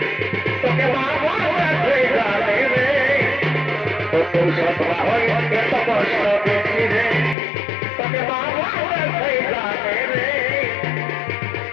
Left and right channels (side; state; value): right; drops out; at 7.4 s